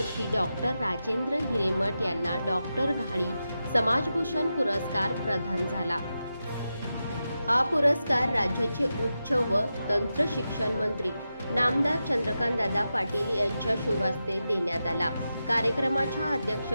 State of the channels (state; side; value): inverted; both; correlation -0.90